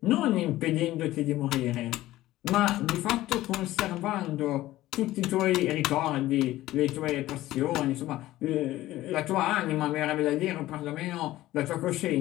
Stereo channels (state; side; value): quieter; right; 15.9 dB